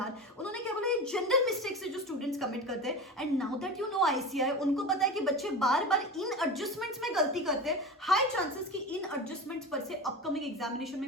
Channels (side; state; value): both; normal; correlation 0.28